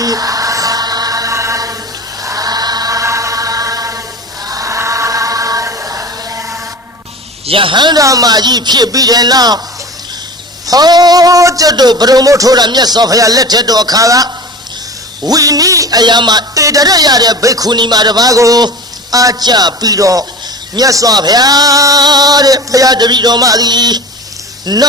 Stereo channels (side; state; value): both; normal; correlation 0.34